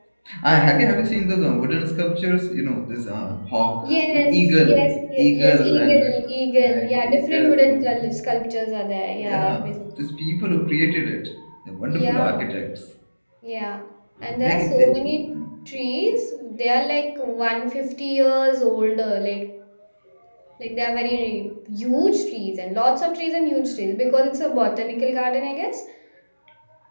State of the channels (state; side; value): inverted; both; correlation -1.00